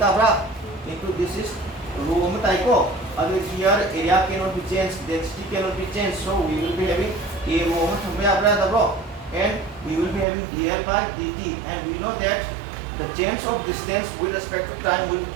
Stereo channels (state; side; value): drops out; left; at 10.2 s